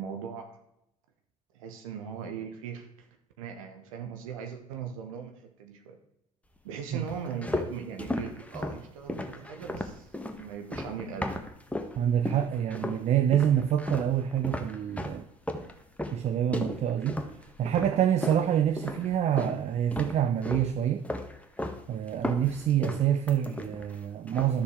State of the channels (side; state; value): left; quieter; 7.3 dB